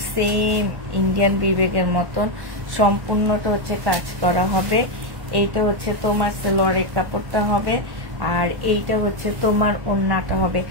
সেম ইন্ডিয়ান বিবেকের মতন। সম্পূর্ণটা হচ্ছে কাজ করা হবে। এইটা হচ্ছে তোমার সেলরের কাপড়টা হবে, আর এইটা হচ্ছে তোমার ওড়নাটা হবে।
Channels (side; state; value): left; late; 1.1 ms